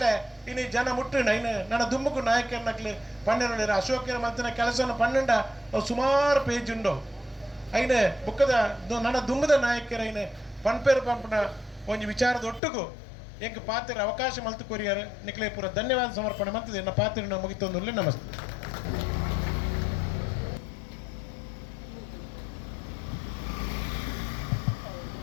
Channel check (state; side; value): drops out; right; at 12.6 s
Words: ಇನ್ನು ಜನ ಮುಟ್ಟಿನ ಇನ್ನು ನನ್ನ ದುಮ್ಮಕು ನಾಯಕರನಕ್ಲಿ ಪಂಡಿರ ಅಶೋಕರ ಮಲ್ತಿನ ಕೆಲಸವನ್ನು ಪನ್ನಂಡ ಅವು ಸುಮಾರು ಪೇಜ್ ಉಂಡು ಐನೆ ಬುಕ್ಕದ ನನ್ನ ದುಮ್ಮದ ನಾಯಕರ ಐನೆ ಪನ್ಪೇರು ಪಂಪನ ಒಂಜಿ ವಿಚಾರದ ಒಟ್ಟಿಗೂ ಎಂಕ ಪಾತ್ರ ಅವಕಾಶ ಮಲ್ತು ಕೊರಿಯಾರ ನಿಕ್ಲೆ ಪೂರ ಧನ್ಯವಾದ ಸಮರ್ಪಣೆ ಮಂತದೆ ನನ್ನ ಪಾತ್ರ ಮುಗಿತೊಂದು ನಮಸ್ತೆ